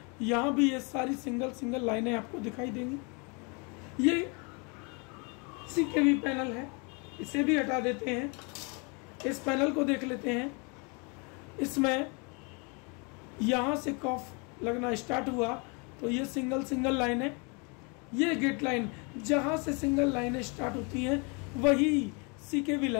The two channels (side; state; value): right; quieter; 32.7 dB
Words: यहाँ भी ये सारी सिंगल सिंगल लाइनें आपको दिखाई देंगी। ये CKV पैनल है, इसे भी हटा देते हैं। इस पैनल को देख लेते हैं, इसमें यहाँ से कॉफ लगना स्टार्ट हुआ तो ये सिंगल सिंगल लाइन है। ये गेट लाइन, जहाँ से सिंगल लाइनें स्टार्ट होती हैं वही CKV